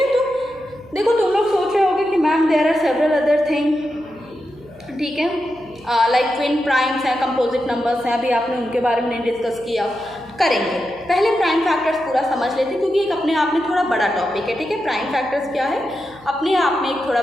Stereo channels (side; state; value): left; noise; hum, 25 dB below the sound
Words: तो देखो तुम लोग सोच रहे होगे कि ma'am there are several other thing. ठीक है, लाइक ट्विन प्राइम्स हैं, कंपोजिट नंबर्स हैं, अभी आपने उनके बारे में नहीं डिस्कस किया. करेंगे। पहले प्राइम फैक्टर्स पूरा समझ लेते हैं क्योंकि एक अपने आप में थोड़ा बड़ा टॉपिक है, ठीक है। प्राइम फैक्टर्स क्या है, अपने आप में एक थोड़ा